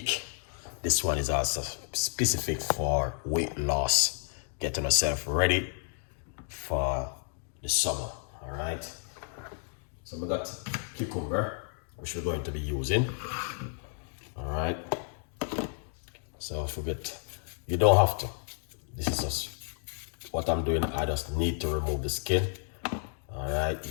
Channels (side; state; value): right; silent; 57 dB below the other